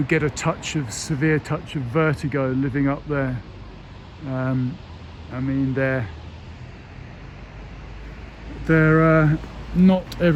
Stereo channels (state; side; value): identical; both; correlation 1.00